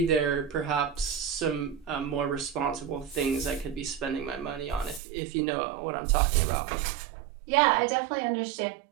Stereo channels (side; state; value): left; drops out; at 5.0 s